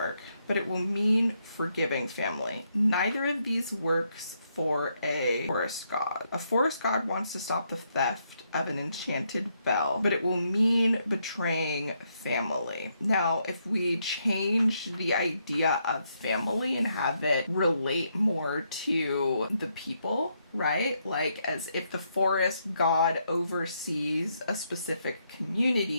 But it will mean forgiving family. Neither of these works for a forest god. A forest god wants to stop the theft of an enchanted bell, but it will mean betraying family. Now, if we change the idea of family and have it relate more to the people, right? Like as if the forest god oversees a specific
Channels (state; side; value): inverted; both; correlation -0.77